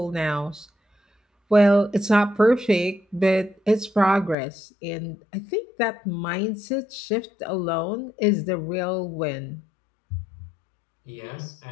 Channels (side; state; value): right; drops out; at 4.4 s